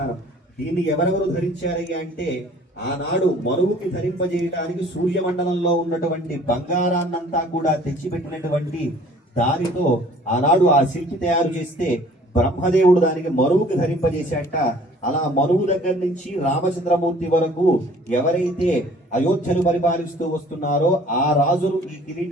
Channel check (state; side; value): normal; both; correlation 0.53